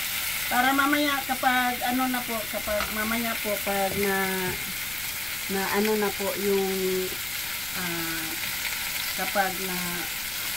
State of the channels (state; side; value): noise; left; rumble, 17 dB below the sound